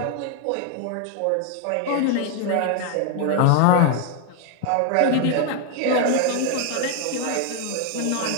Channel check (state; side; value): different; both; correlation 0.00